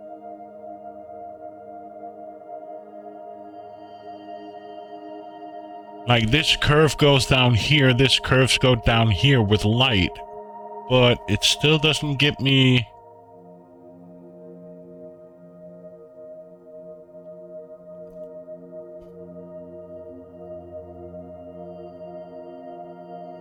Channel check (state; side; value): identical; both; correlation 1.00